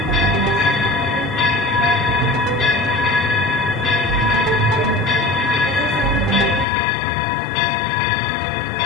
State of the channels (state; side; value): drops out; right; at 6.7 s